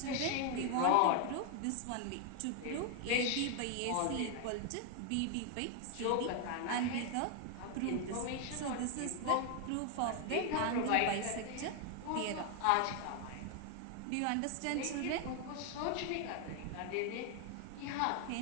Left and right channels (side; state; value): both; different; correlation 0.00